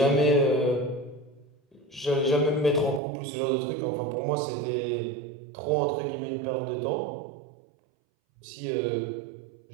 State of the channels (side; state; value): left; drops out; at 3.0 s